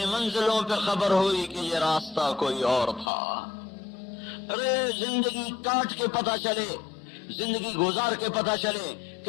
منزلوں پہ خبر ہوئی کہ یہ راستہ کوئی اور تھا۔ ارے زندگی کاٹ کے پتہ چلے، زندگی گزار کے پتہ چلے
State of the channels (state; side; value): drops out; right; at 3.1 s